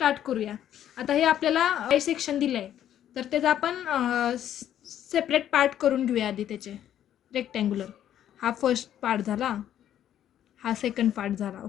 करूया. आता हे आपल्याला आय सेक्शन दिलं आहे, तर त्याचा आपण सेपरेट पार्ट करून घेऊया आधी. त्याचे रेक्टँग्युलर हा फर्स्ट पार्ट झाला, हा सेकंड पार्ट झाला,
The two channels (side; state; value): right; quieter; 10.9 dB